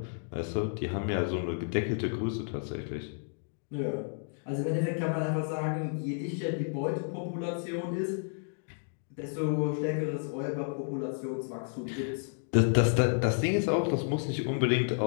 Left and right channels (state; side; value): silent; right; digital silence